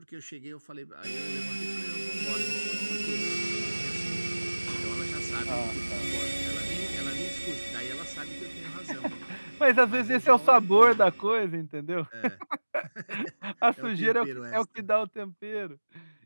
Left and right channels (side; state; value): both; inverted; correlation -1.00